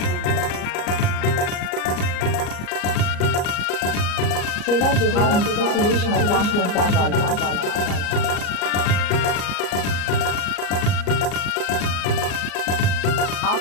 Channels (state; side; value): late; right; 34 ms